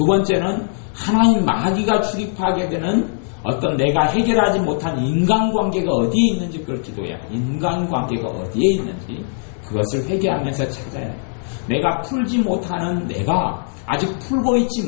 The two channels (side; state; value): right; silent; 63 dB below the other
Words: 번째는 하나님 마귀가 출입하게 되는 어떤 내가 해결하지 못한 인간관계가 어디에 있는지 그걸 기도해야 돼. 인간관계가 어디에 있는지 그것을 회개하면서 찾아야 돼. 내가 풀지 못하는, 내가 아직 풀고